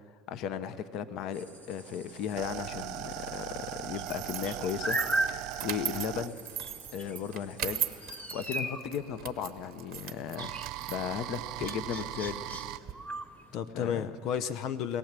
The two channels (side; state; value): both; normal; correlation 0.38